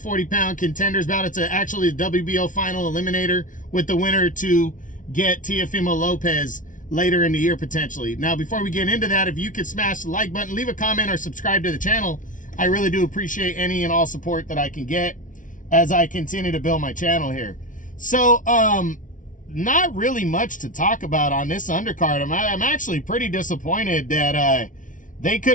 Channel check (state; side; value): late; right; 0.38 ms